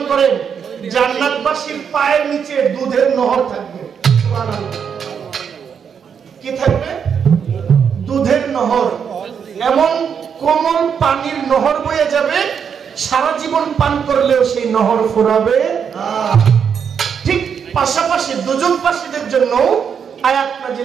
করেন জান্নাতবাসীর পায়ের নিচে দুধের নহর থাকবে। সুবহানাল্লাহ। কি থাকবে? দুধের নহর, এমন কোমল পানির নহর বয়ে যাবে, সারা জীবন পান করলেও সেই নহর ফুরাবে না। ঠিক পাশাপাশি দুজকবাসীদের জন্য আয়াত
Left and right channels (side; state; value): left; quieter; 7.2 dB